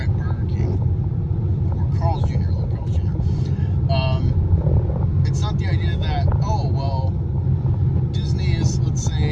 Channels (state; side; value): identical; both; correlation 1.00